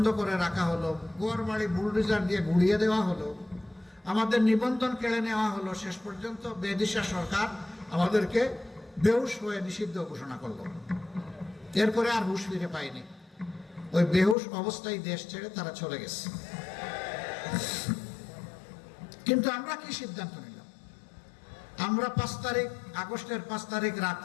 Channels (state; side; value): drops out; right; at 14.4 s